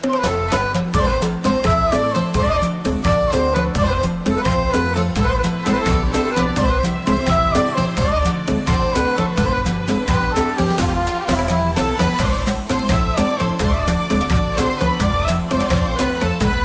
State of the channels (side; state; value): both; identical; correlation 1.00